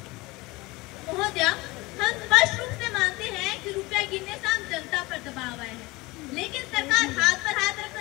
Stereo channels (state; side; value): quieter; right; 22.2 dB